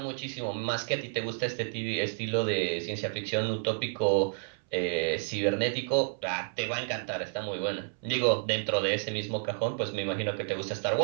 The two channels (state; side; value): silent; left; 57 dB below the other